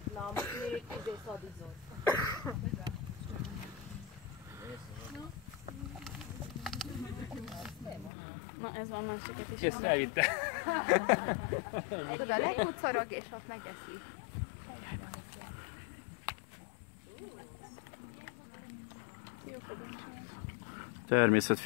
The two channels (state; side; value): drops out; right; at 8.1 s